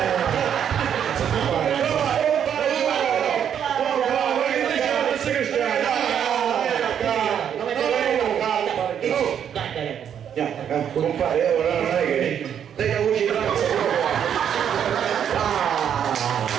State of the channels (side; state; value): left; quieter; 8.8 dB